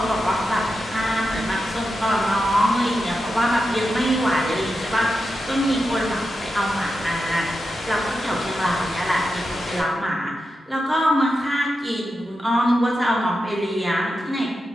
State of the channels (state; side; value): normal; both; correlation 0.89